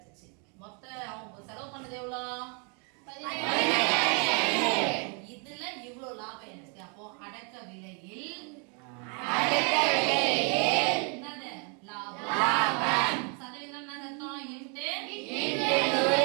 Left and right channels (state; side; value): quieter; left; 36.7 dB